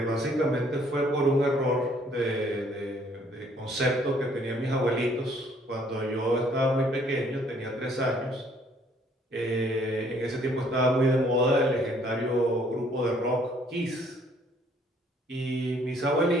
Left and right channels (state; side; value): normal; both; correlation 0.62